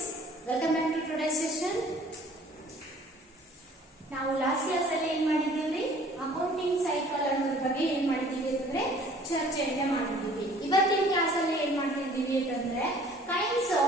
Welcome back to today's session. ನಾವು last class ಅಲ್ಲಿ ಏನು ಮಾಡಿದ್ದೀವಿ ಅಕೌಂಟಿಂಗ್ ಸೈಕಲ್ ಅನ್ನೋದ್ರ ಬಗ್ಗೆ ಏನು ಮಾಡಿದ್ದೀವಿ ಅಂತಂದ್ರೆ ಚರ್ಚೆಯನ್ನ ಮಾಡಿದ್ದೀವಿ. ಇವತ್ತಿನ ಕ್ಲಾಸ್ ಅಲ್ಲಿ ಏನು ಮಾಡ್ತಿದ್ದೀವಿ ಅಂತಂದ್ರೆ ಕೈಂಡ್ಸ್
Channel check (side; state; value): both; normal; correlation 0.53